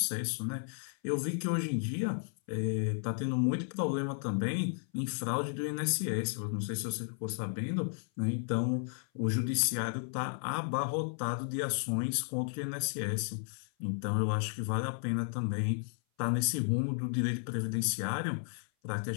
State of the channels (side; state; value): right; silent; 55 dB below the other